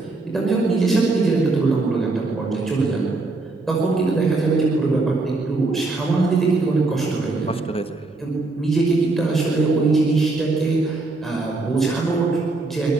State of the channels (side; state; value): left; quieter; 3.3 dB